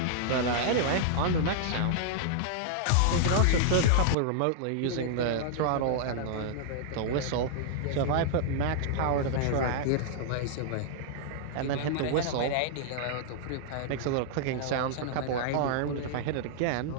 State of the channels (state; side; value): different; both; correlation -0.01